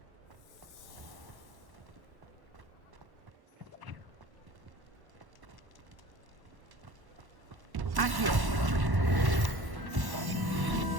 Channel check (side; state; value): left; late; 1.1 ms